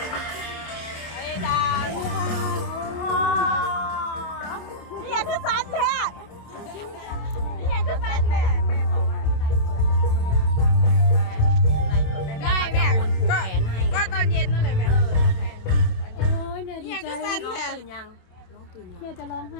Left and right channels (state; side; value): late; right; 27 ms